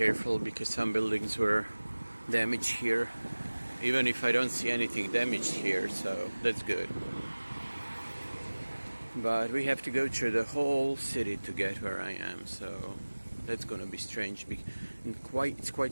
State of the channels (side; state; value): both; inverted; correlation -1.00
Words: because some buildings were damaged here, even if I don't see anything damaged here, so that's good. But we have to go through the whole city to get where I am, so that's gonna be strange. And it's